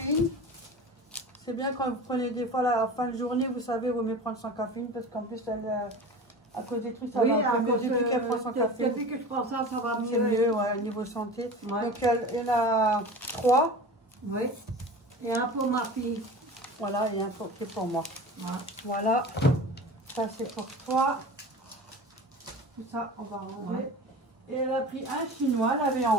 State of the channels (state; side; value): normal; both; correlation 0.35